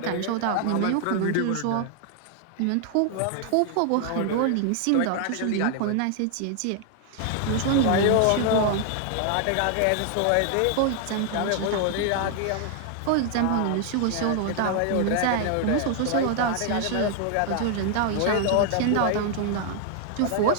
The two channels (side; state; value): both; different; correlation 0.00